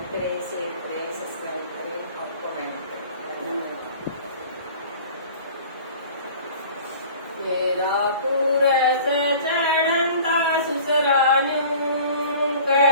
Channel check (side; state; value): both; inverted; correlation -0.45